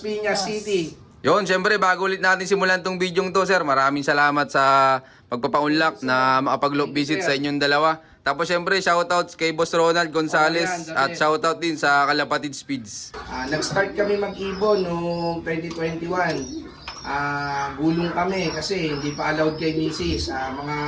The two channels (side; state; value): both; identical; correlation 1.00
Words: Piñas City. Yun, syempre bago ulit natin simulan tong video to, sir, maraming salamat sa pagpapaunlak na makapag-loop visit sa inyong dalawa. Tapos syempre shoutout kay Boss Ronald Gonzales at shoutout din sa Kalapatid Speeds. Nag-start kami mag-ibon noong 2021. Gulong kami kasi hindi pa allowed kay Mrs. Mga